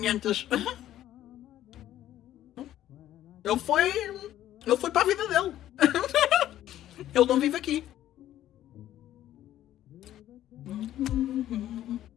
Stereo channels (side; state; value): right; quieter; 12.7 dB